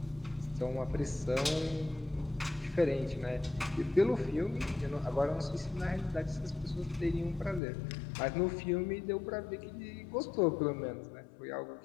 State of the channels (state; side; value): drops out; right; at 7.6 s